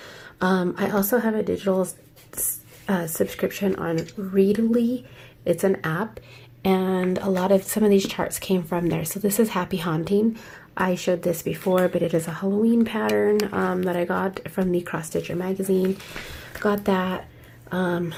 I also have a digital subscription on Readly. It's an app. And some of these charts came from there. So this is Happy Haunting. I showed this before, but it is a Halloween pattern that I got from the Cross Stitcher magazine. Got that. I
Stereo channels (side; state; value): both; identical; correlation 1.00